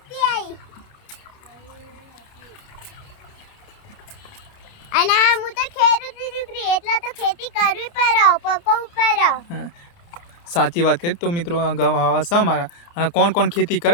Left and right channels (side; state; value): right; late; 29 ms